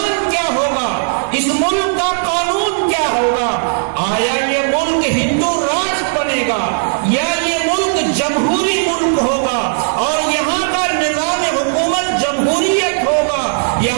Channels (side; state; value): left; silent; digital silence